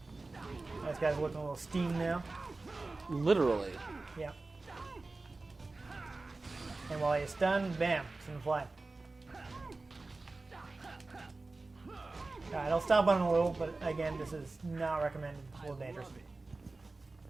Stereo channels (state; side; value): quieter; left; 3.4 dB